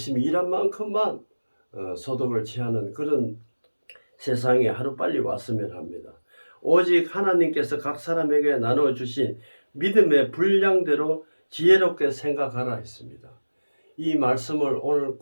일한 만큼만 소득을 취하는 그런 세상이 하루빨리 왔으면 합니다. 오직 하나님께서 각 사람에게 나눠주신 믿음의 분량대로 지혜롭게 생각하라 했습니다. 이 말씀을 오늘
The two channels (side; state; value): both; inverted; correlation -1.00